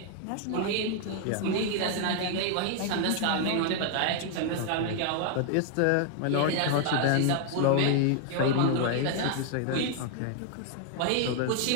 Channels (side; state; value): both; different; correlation 0.00